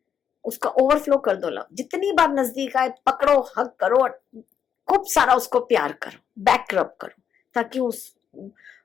उसका ओवरफ्लो कर दो लव। जितनी बार नजदीक आए पकड़ो, हक करो, खूब सारा उसको प्यार करो, बैक रब करो, ताकि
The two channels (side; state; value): right; quieter; 8.1 dB